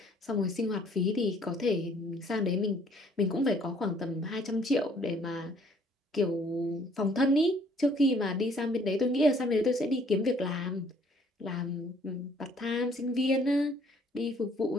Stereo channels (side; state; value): both; normal; correlation 0.61